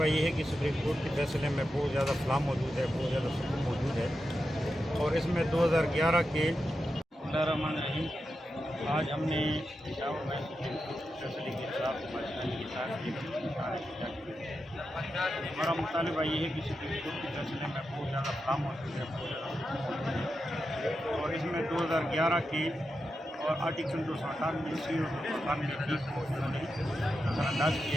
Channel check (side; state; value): both; normal; correlation 0.88